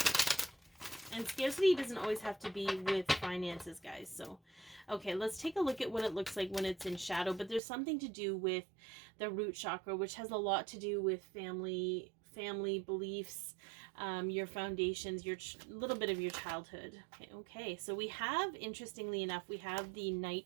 And scarcity doesn't always have to be with finances, guys. So, okay, let's take a look at what it looks like when it's in shadow. But there's something to do with the root chakra, which has a lot to do with family family beliefs, your foundations, little bit of your childhood. Okay, so we have, interestingly enough, we have the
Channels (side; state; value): left; drops out; at 7.6 s